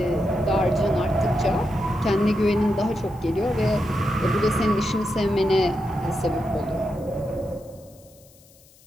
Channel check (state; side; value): noise; left; hiss, 27 dB below the sound